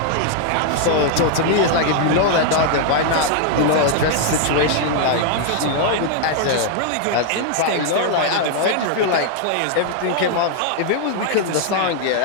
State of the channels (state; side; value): different; both; correlation 0.00